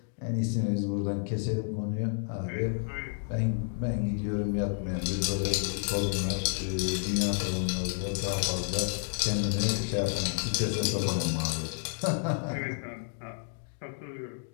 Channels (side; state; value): right; silent; 57 dB below the other